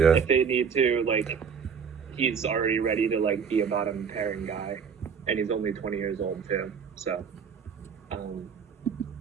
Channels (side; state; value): left; quieter; 6.5 dB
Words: If they need to, like, he's already ready to like be a bottom pairing guy, and he's only 20 years old too. So